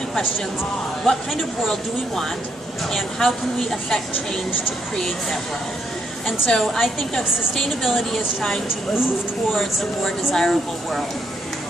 questions, what kind of world do we want, and how can we affect change to create that world? And so I think of sustainability as trying to move towards a more desirable world.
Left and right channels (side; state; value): both; normal; correlation 0.75